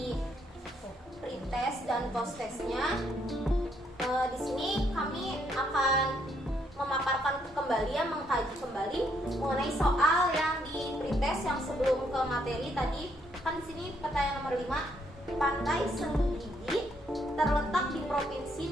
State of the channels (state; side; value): normal; both; correlation 0.72